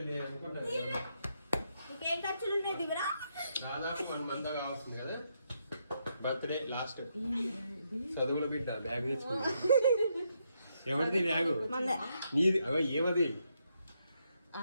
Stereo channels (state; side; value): inverted; both; correlation -0.79